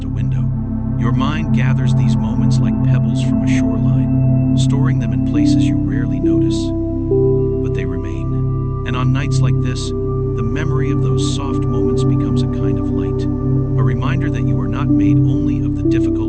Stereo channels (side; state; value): both; identical; correlation 1.00